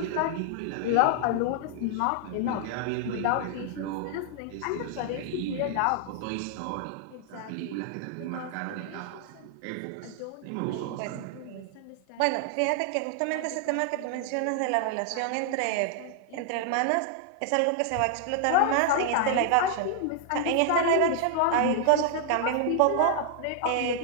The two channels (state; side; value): different; both; correlation 0.00